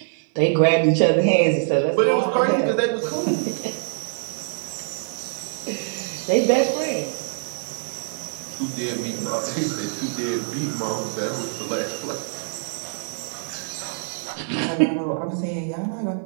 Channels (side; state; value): left; silent; 57 dB below the other